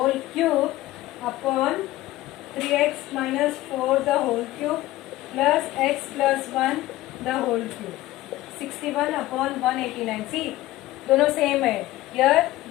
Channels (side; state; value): right; quieter; 16.4 dB